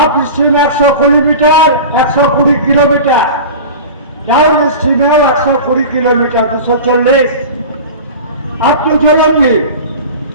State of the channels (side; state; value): both; inverted; correlation -0.33